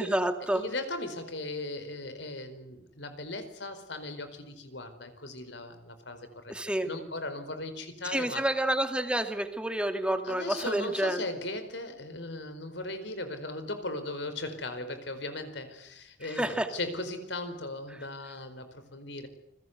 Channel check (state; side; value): normal; both; correlation 0.53